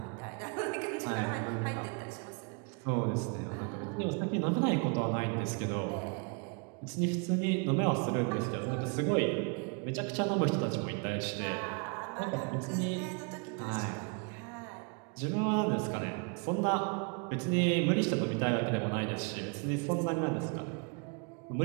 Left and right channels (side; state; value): left; quieter; 35.6 dB